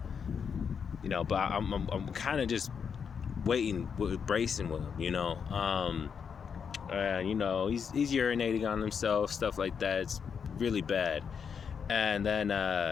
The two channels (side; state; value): right; quieter; 6.7 dB